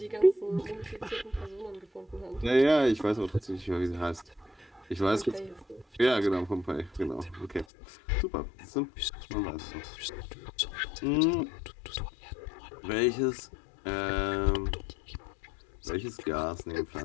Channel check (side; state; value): right; drops out; at 7.7 s